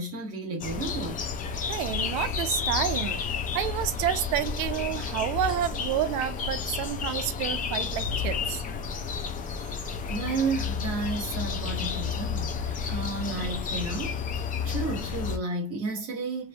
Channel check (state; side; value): normal; both; correlation 0.18